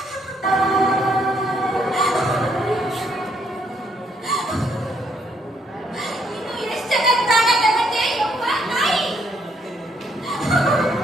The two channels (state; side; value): normal; both; correlation 0.71